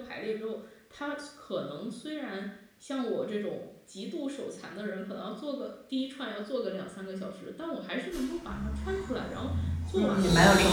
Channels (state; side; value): identical; both; correlation 1.00